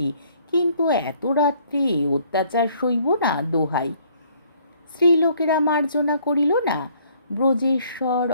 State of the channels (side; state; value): both; inverted; correlation -0.62